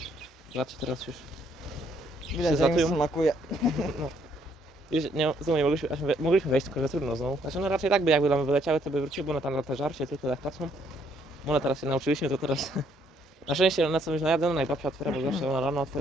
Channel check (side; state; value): both; normal; correlation 0.68